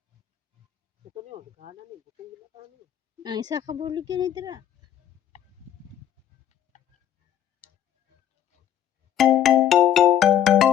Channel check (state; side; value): quieter; right; 10.6 dB